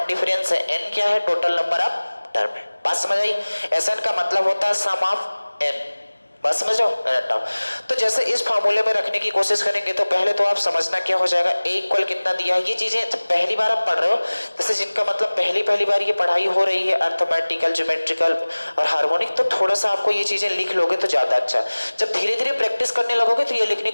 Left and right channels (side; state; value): both; inverted; correlation -1.00